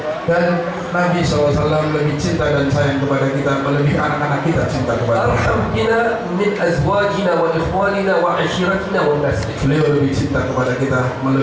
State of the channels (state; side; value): identical; both; correlation 1.00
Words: Dan Nabi SAW lebih cinta dan sayang kepada kita melebihi anak-anak kita cinta kepada kita. أرحم بنا من أزواجنا وإخواننا وعشيرتنا والناس. Beliau lebih cinta kepada kita